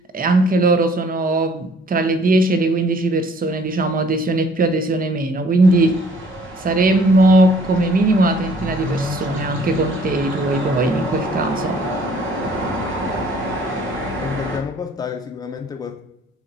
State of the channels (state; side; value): normal; both; correlation 0.58